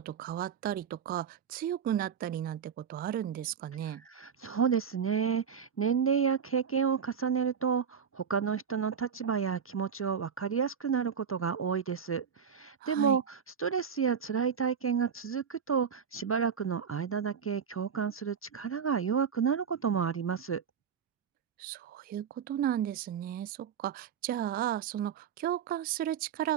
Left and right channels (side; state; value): left; quieter; 7.2 dB